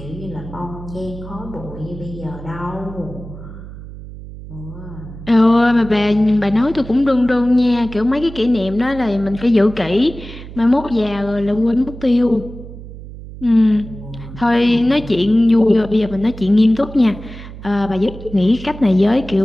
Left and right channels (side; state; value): right; noise; hum, 14 dB below the sound